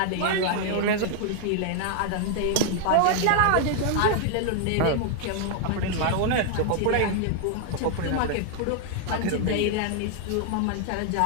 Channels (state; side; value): different; both; correlation 0.00